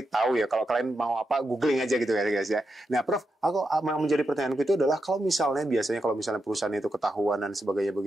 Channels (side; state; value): both; normal; correlation 0.86